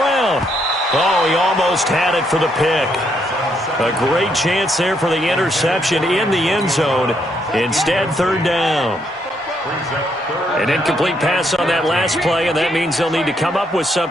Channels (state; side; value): normal; both; correlation 0.74